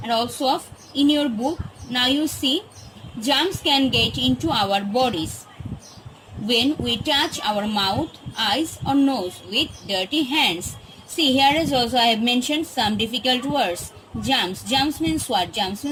And also in your book, now you see, germs can get into our bodies when we touch our mouth, eyes or nose with dirty hands. See, here is also I have mentioned some difficult words. Germs. Germs means what? Germs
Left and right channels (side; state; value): both; identical; correlation 1.00